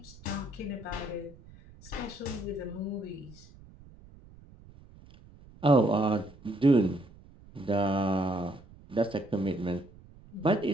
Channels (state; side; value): noise; right; rumble, 22 dB below the sound